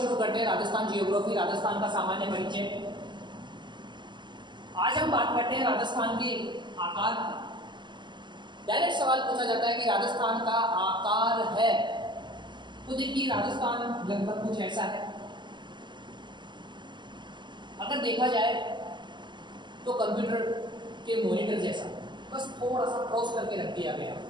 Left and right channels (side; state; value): left; late; 0.22 ms